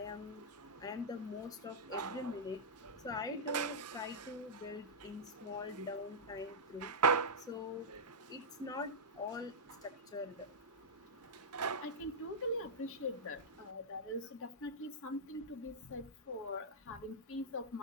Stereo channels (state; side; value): normal; both; correlation -0.08